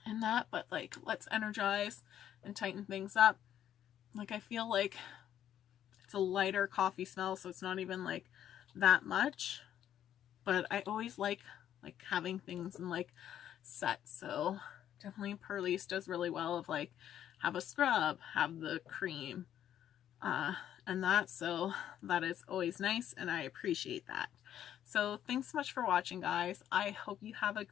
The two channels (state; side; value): quieter; right; 10.7 dB